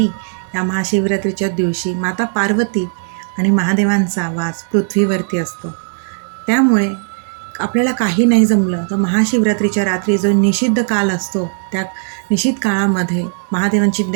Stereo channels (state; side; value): silent; left; 56 dB below the other